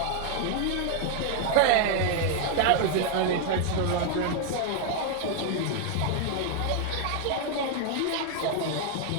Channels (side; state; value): both; different; correlation 0.00